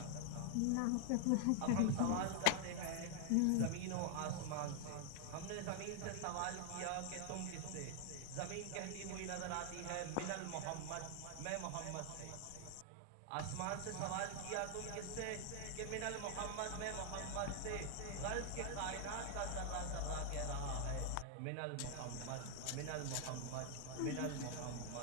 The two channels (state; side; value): different; both; correlation 0.00